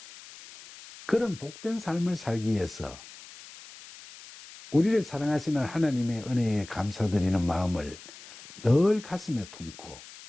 그런 복된 삶을 살기 위해서 우리를 사랑하시는 하나님의 은혜에 감사드리는 마음을 늘 가슴에 품고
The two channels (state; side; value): noise; left; hiss, 17 dB below the sound